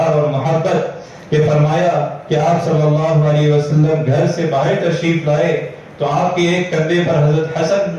اور محبت، کہ فرمایا کہ آپ صلی اللہ علیہ وسلم گھر سے باہر تشریف لائے تو آپ کے ایک کندھے پر حضرت حسن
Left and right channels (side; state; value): both; identical; correlation 1.00